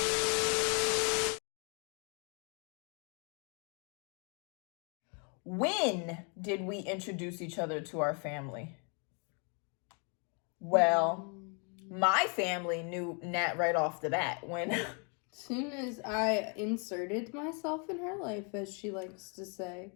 When did we introduce each other to our family? Well, my family knew Nat right off the bat when soon as I inserted myself in her life, as she likes to say.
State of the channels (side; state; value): right; quieter; 37.2 dB